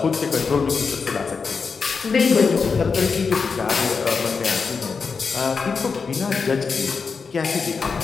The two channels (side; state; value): right; quieter; 5.2 dB